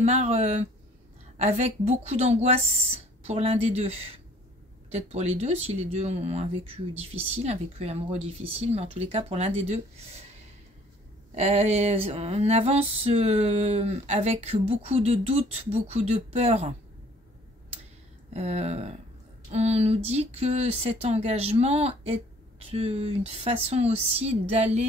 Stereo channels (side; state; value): both; normal; correlation 0.56